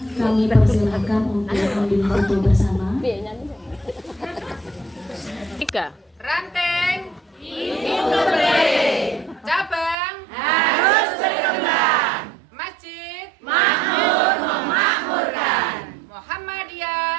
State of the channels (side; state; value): left; drops out; at 10.0 s